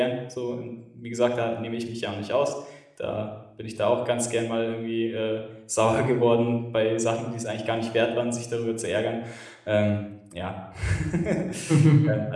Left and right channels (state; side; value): identical; both; correlation 1.00